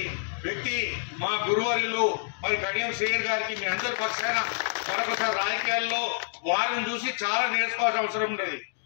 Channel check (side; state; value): right; silent; digital silence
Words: వ్యక్తి మా గురువర్యులు మరి కడియం శ్రీయర్ గారికి మీ అందరి పక్షాన మరొకసారి రాజకీయాల్లో వారిని చూసి చాలా నేర్చుకోవాల్సిన అవసరం ఉండేది.